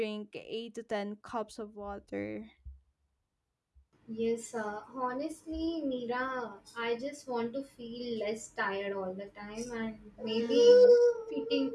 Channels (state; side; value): identical; both; correlation 1.00